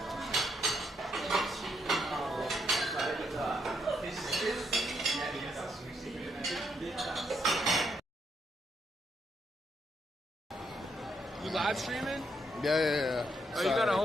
You live streaming? Yeah. Oh, you got a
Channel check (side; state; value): both; normal; correlation 0.76